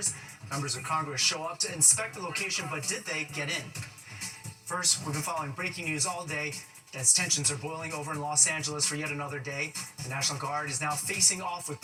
Members of Congress show up to inspect the location, but did they get in? First, we've been following breaking news all day as tensions are boiling over in Los Angeles for yet another day. The National Guard is now facing off with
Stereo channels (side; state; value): both; identical; correlation 1.00